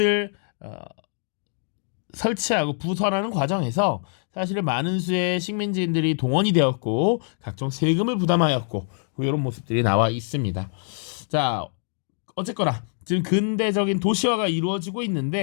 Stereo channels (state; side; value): silent; right; 62 dB below the other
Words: 설치하고 부설하는 과정에서 사실은 많은 수의 식민지인들이 동원이 되었고 각종 세금을 부담하였고 이런 모습들이 나와 있습니다. 자, 어쨌거나 지금 근대적인 도시화가 이루어지고